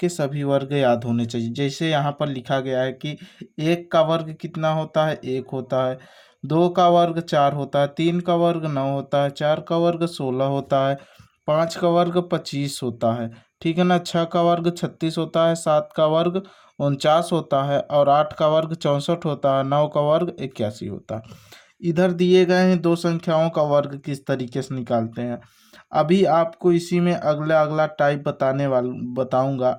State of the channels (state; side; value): identical; both; correlation 1.00